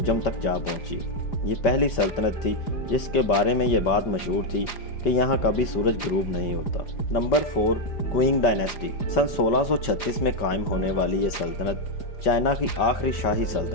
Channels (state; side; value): late; right; 5.2 ms